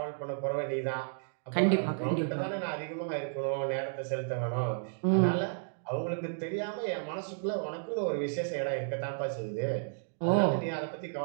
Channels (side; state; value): left; silent; digital silence